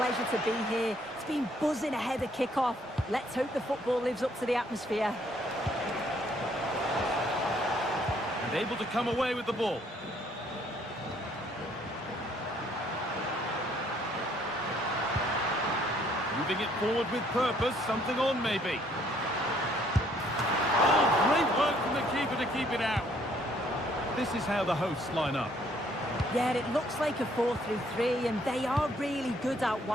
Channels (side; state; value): both; normal; correlation 0.65